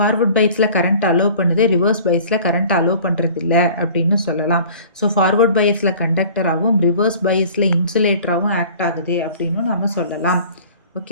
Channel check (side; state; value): both; inverted; correlation -0.47